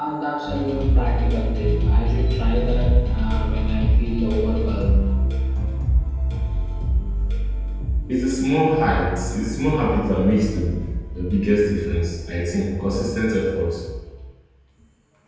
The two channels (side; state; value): both; identical; correlation 1.00